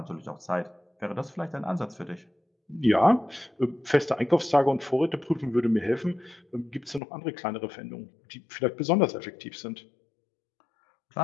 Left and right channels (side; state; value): right; drops out; at 7.0 s